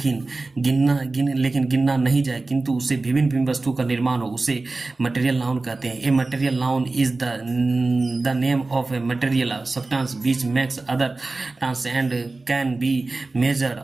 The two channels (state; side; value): quieter; left; 3.4 dB